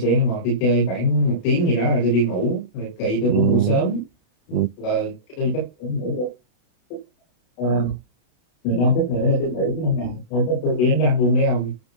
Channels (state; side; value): late; right; 32 ms